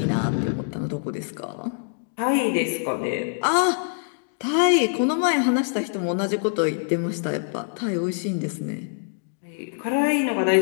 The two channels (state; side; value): silent; right; digital silence